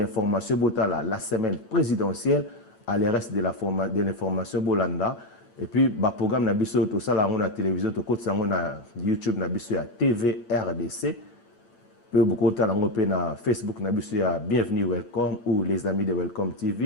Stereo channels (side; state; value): right; late; 8.4 ms